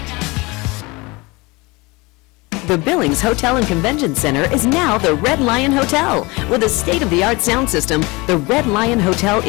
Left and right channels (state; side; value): quieter; right; 24.7 dB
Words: The Billings Hotel and Convention Center is now the Red Lion Hotel. With a state-of-the-art sound system, the Red Lion Hotel